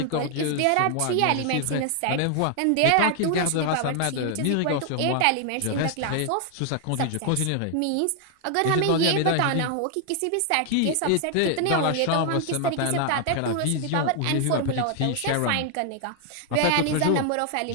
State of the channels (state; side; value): different; both; correlation 0.00